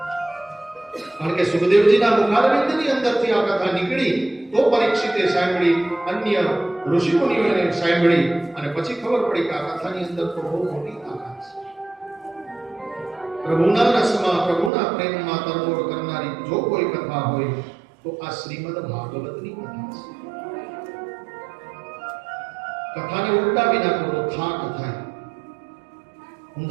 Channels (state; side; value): drops out; left; at 14.7 s